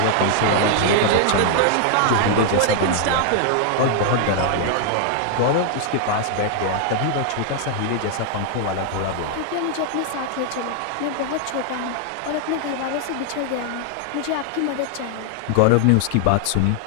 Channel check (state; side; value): different; both; correlation 0.00